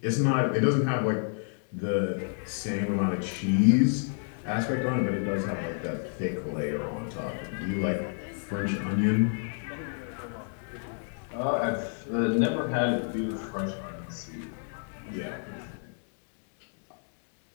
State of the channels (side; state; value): right; silent; 58 dB below the other